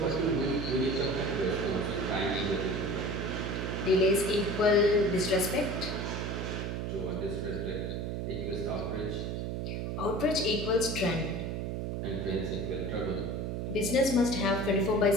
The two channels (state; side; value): noise; right; hum, 3 dB below the sound